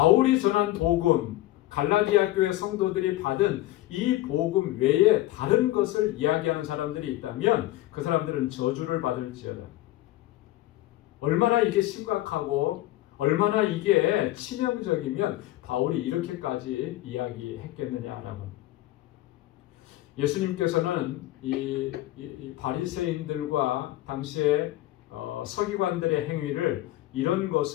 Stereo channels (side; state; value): right; quieter; 16.1 dB